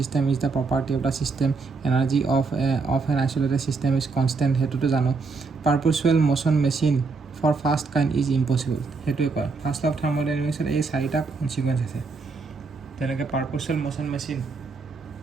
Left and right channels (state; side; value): quieter; left; 4.3 dB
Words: is the property of the system, energy of an isolated system is constant, সেইটোতো জানো। Perpetual motion machine for first kind is impossible, সেইটোৱে কয়। First law of থাৰ্মোডাইনামিক্সত এই 4টা consequence আছে। তেনেকৈ পাৰপচুৱেল motion